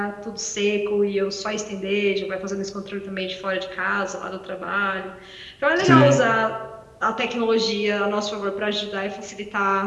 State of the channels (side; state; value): both; identical; correlation 1.00